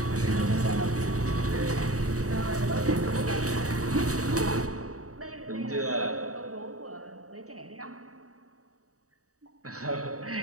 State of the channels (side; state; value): left; late; 0.66 ms